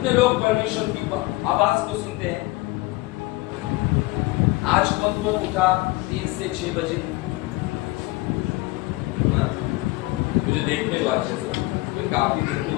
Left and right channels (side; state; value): right; quieter; 21.1 dB